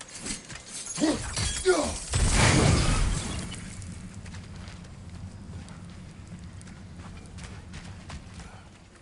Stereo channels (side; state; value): both; identical; correlation 1.00